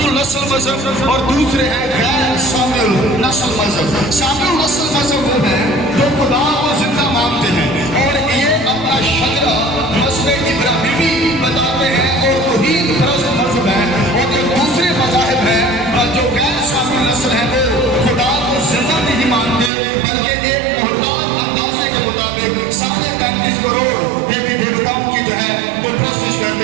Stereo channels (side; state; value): left; drops out; at 19.7 s